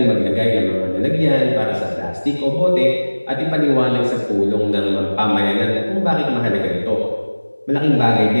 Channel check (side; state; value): both; inverted; correlation -1.00